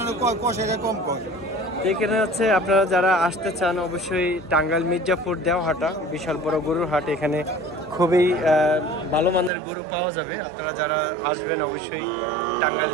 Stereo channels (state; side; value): drops out; left; at 9.5 s